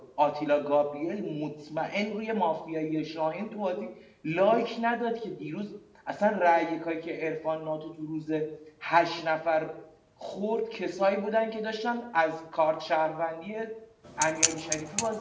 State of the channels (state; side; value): identical; both; correlation 1.00